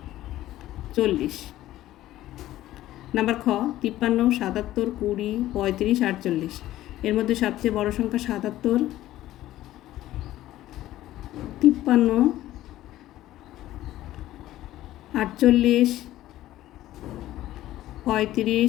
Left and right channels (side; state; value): right; quieter; 14.5 dB